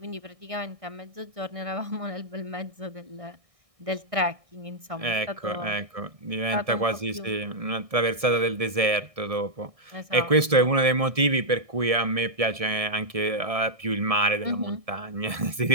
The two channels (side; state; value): left; late; 1.7 ms